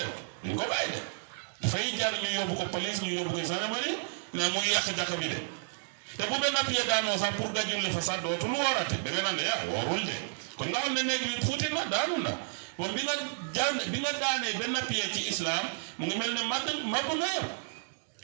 duñ ko bàyyi de dafay jar ñu yóbbu ko police ñu yóbbu ko gendarmerie ne mu ngi yàq jàkka bi de te bu benn pied daanoo sax pour nga julli fa sax dootul woorate da nga naan de woorul de kon nga xam ne néeg bi fuuti na daanu na bon bi nga daanee benn pied ci islam mu ngi mel ne màbb nga yow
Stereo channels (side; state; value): left; silent; digital silence